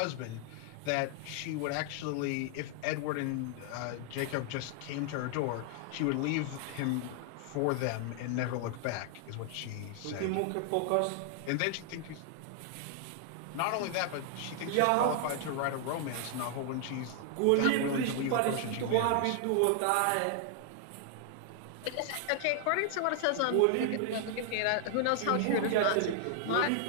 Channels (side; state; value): both; different; correlation 0.00